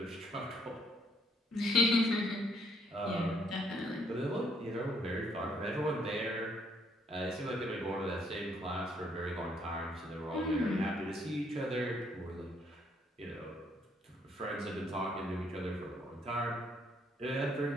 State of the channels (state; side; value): normal; both; correlation 0.68